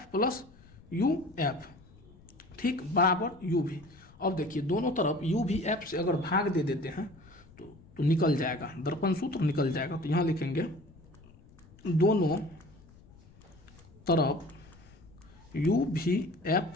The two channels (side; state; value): left; noise; rumble, 24 dB below the sound